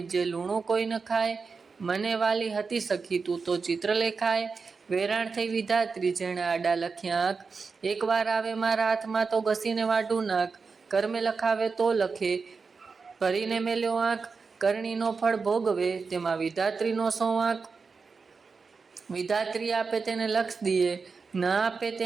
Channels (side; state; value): left; quieter; 4.8 dB